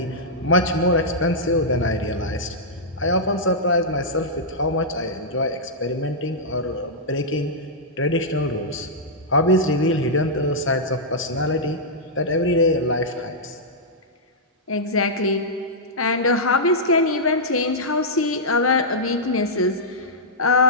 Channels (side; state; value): both; normal; correlation -0.10